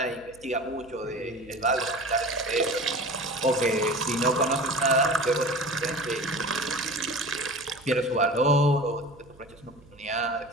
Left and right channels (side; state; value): right; noise; hum, 25 dB below the sound